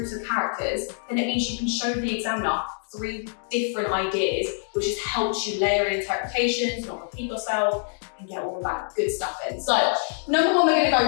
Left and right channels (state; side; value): silent; right; 62 dB below the other